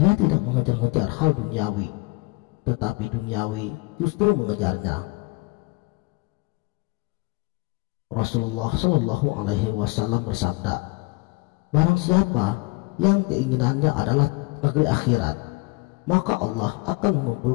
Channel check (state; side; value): quieter; right; 25.5 dB